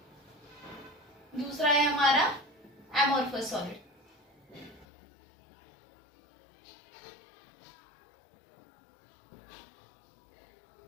दूसरा है हमारा एमोर्फस सॉलिड।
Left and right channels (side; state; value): right; drops out; at 4.9 s